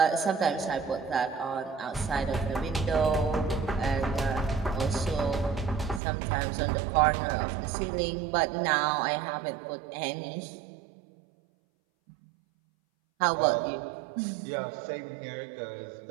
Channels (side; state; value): left; drops out; at 6.0 s